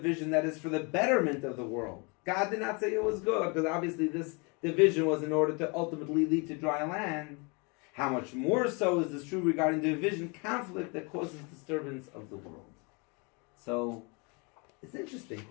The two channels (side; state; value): right; quieter; 31.8 dB